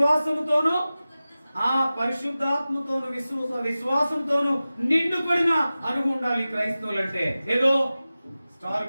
ఆ పరిశుద్ధాత్మతోను విశ్వాసంతోను నిండుకొడిన అనుభవం ఉండాలి క్రైస్తవులు అంటే. ఏదో స్టార్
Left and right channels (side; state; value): both; inverted; correlation -0.96